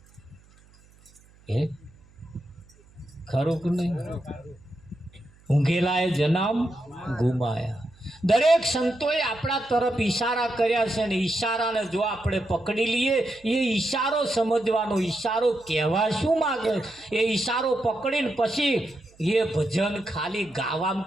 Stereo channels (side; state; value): right; noise; hum, 28 dB below the sound